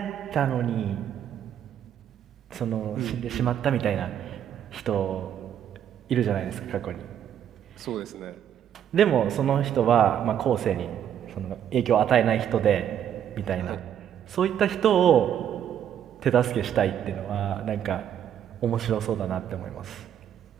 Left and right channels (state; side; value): quieter; left; 9.7 dB